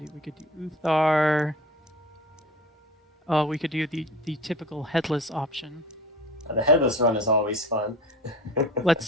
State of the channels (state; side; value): normal; both; correlation 0.38